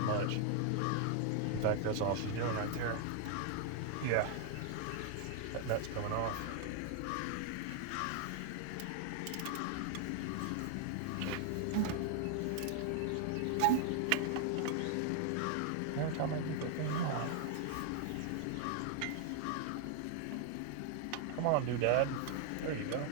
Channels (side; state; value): both; different; correlation 0.00